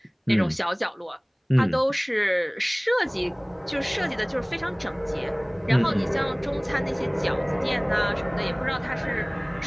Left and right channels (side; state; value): both; identical; correlation 1.00